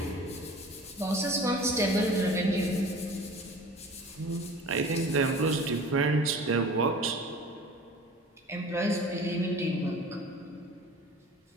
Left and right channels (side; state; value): both; normal; correlation 0.42